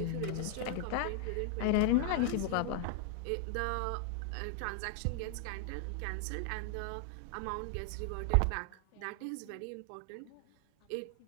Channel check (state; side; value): different; both; correlation 0.00